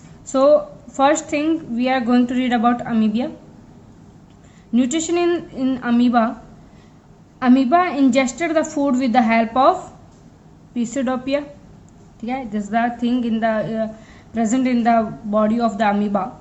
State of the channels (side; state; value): both; identical; correlation 1.00